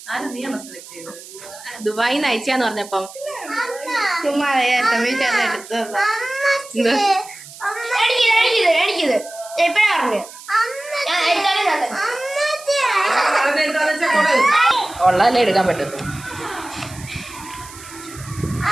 ദുബായി നയിച്ചാന്ന് പറഞ്ഞപ്പം ചുമ്മാ എടുത്തത്. എനിക്കിത് എപ്പോഴാ പറഞ്ഞു ഉള്ളതല്ലേ എടുക്കാൻ പറ്റത്തു.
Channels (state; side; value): noise; right; hiss, 17 dB below the sound